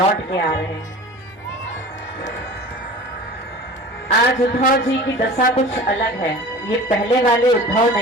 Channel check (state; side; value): normal; both; correlation 0.39